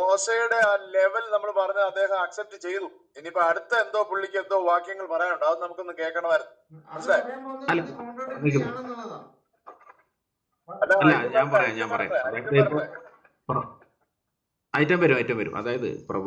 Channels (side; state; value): both; identical; correlation 1.00